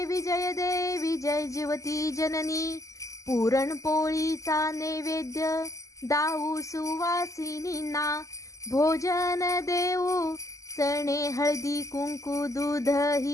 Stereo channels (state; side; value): late; right; 0.16 ms